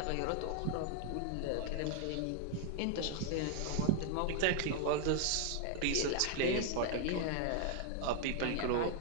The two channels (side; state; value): both; different; correlation 0.00